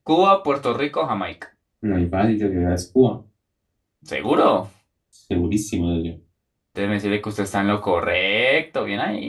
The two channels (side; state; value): both; identical; correlation 1.00